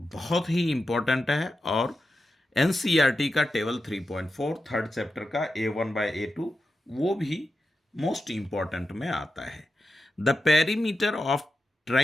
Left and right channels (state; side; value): normal; both; correlation 0.90